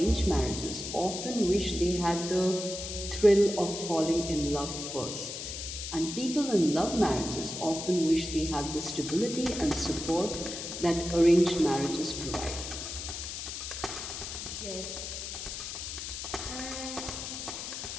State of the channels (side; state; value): left; noise; hiss, 6 dB below the sound